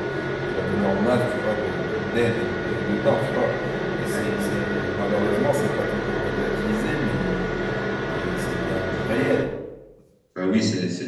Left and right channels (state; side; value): identical; both; correlation 1.00